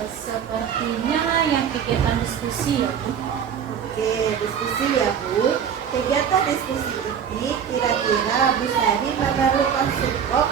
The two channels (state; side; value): quieter; left; 8.0 dB